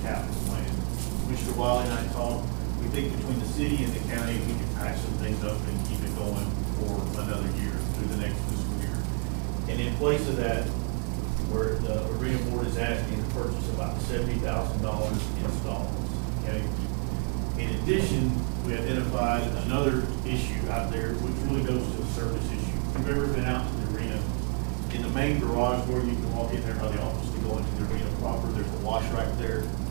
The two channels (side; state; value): left; quieter; 37.0 dB